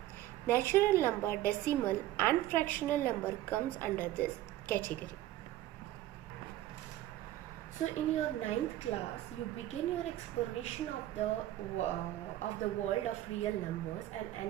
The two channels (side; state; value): left; quieter; 14.4 dB